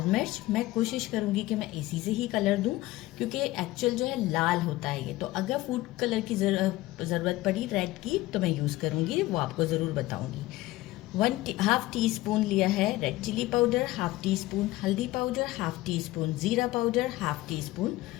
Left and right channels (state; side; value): quieter; right; 17.9 dB